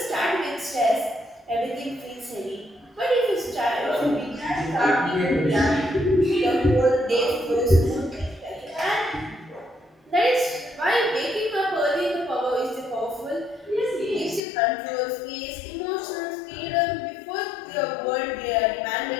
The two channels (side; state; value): right; drops out; at 14.4 s